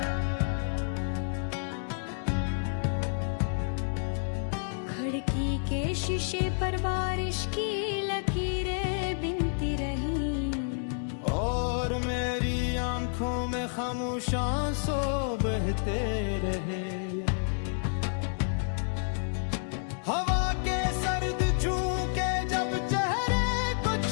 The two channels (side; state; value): right; silent; digital silence